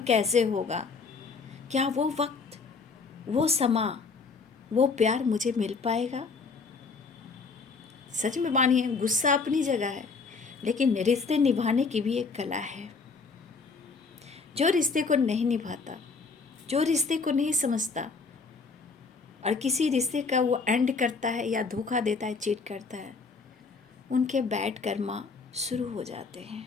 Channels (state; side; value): quieter; right; 4.6 dB